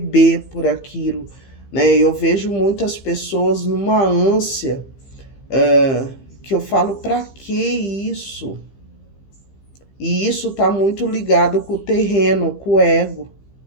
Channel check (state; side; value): late; right; 15 ms